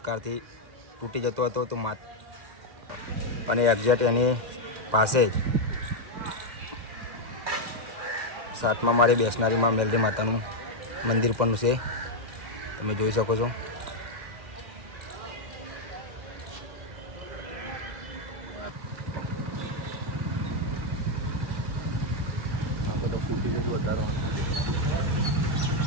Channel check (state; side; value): late; left; 2.1 ms